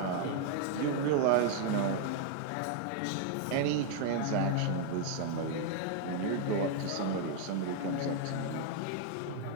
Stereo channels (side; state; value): both; different; correlation 0.00